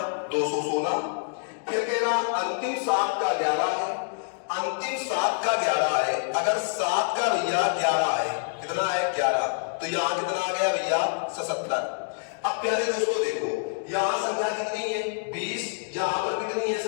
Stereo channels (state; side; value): silent; right; digital silence